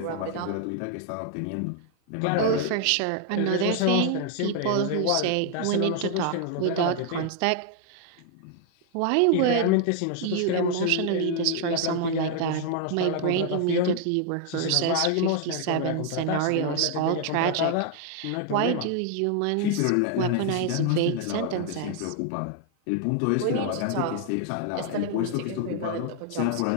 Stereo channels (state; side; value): different; both; correlation 0.00